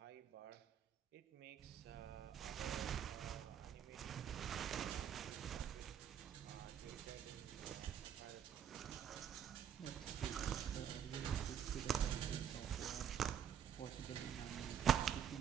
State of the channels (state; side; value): quieter; left; 8.9 dB